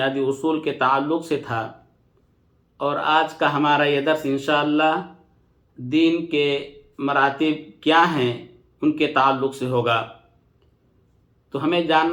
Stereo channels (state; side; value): identical; both; correlation 1.00